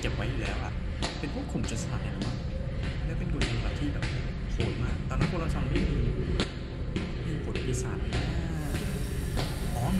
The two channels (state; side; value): identical; both; correlation 1.00